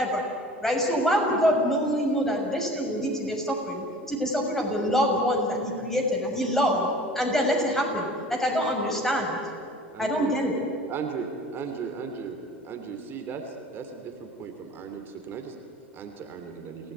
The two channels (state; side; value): normal; both; correlation 0.44